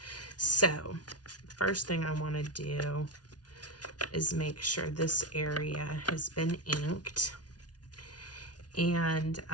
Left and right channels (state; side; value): late; right; 0.69 ms